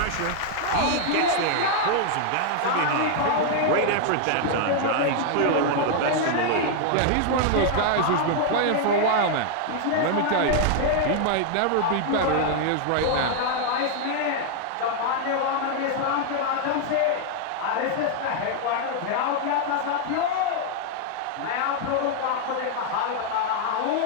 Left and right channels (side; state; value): both; different; correlation 0.00